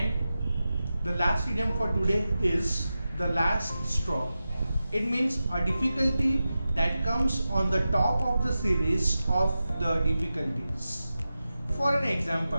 the last idiom for today is the last straw. It means a difficulty that comes on the top of the series of the difficulties. For an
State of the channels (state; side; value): inverted; both; correlation -0.93